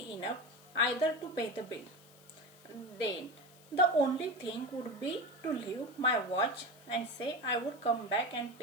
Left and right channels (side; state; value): left; noise; hiss, 25 dB below the sound